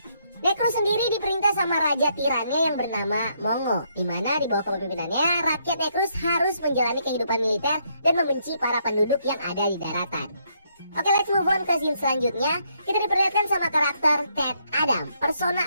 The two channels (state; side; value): inverted; both; correlation -0.73